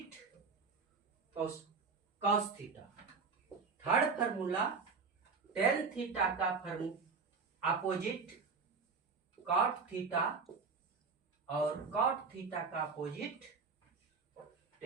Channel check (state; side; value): quieter; left; 5.0 dB